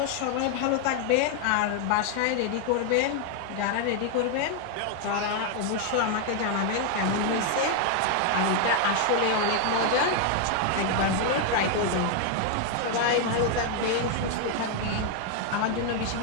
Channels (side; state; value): both; different; correlation 0.00